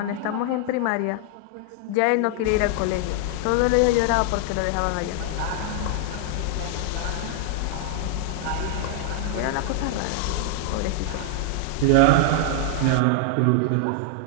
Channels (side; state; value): both; different; correlation 0.00